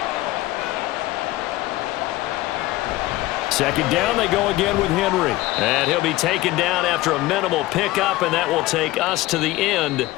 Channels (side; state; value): right; quieter; 17.5 dB